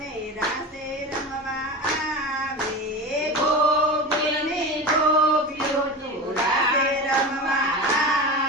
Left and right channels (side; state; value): both; normal; correlation 0.28